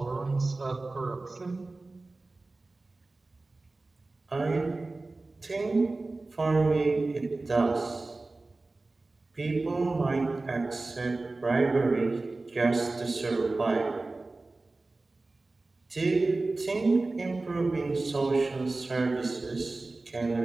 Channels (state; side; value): quieter; left; 3.3 dB